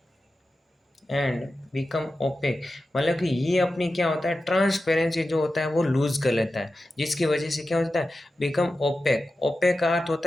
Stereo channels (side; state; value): both; normal; correlation 0.93